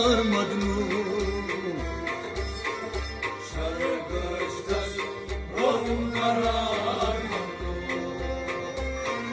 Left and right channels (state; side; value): identical; both; correlation 1.00